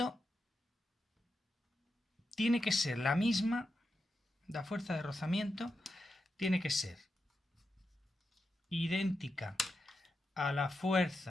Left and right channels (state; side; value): normal; both; correlation 0.87